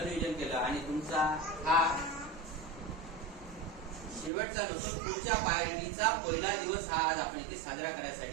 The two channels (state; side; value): drops out; left; at 4.3 s